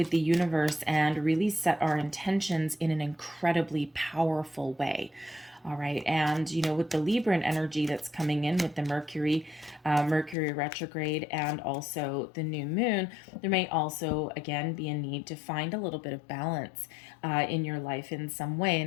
the universe and really set our intentions in an incredibly powerful way. All right. And, with the Libran energy that's coming in with the Mercury retrograde and also the new moon, there may also, again, be a need to find a little bit of balance in your life in some way.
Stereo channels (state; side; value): drops out; right; at 10.4 s